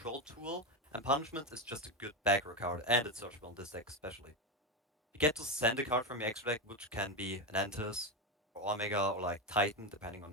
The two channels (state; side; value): normal; both; correlation 0.14